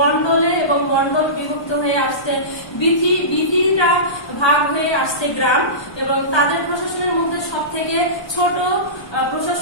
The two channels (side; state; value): right; late; 1.1 ms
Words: এবং মন্ডল বিভক্ত হয়ে আসতে বিধিটা ভাগ হয়ে আসছে গ্রাম, এবং তাদের প্রশাসনের মধ্যে সবথেকে ছোট